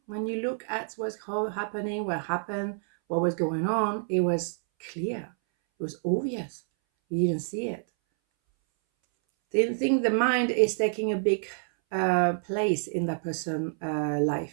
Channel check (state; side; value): silent; left; 59 dB below the other